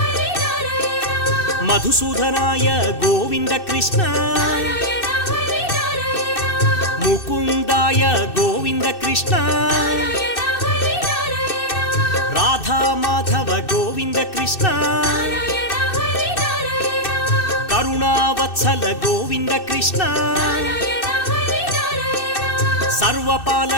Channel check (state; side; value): late; right; 2.6 ms